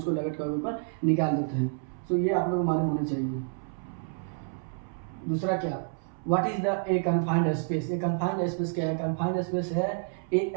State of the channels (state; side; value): silent; left; 59 dB below the other